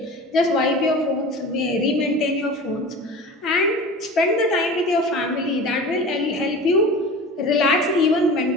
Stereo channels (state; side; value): normal; both; correlation 0.36